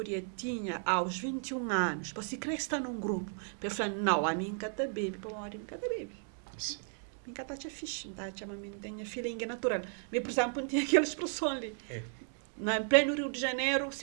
tinha aos 21 anos, para se crescer num grupo, para falar, não, a mim cada bebe, para uma hora eu cada bebe. Sim. Mim cada tinha fixe, tá? Chama mim tem feeling natural. Mas, por exemplo, não tinha aquela expressão ali. Em pleno Rio de Janeiro,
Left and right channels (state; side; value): silent; left; 55 dB below the other